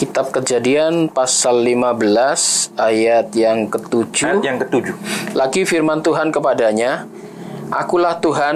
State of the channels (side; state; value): both; identical; correlation 1.00